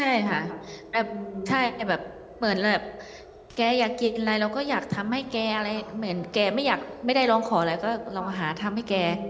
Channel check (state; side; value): identical; both; correlation 1.00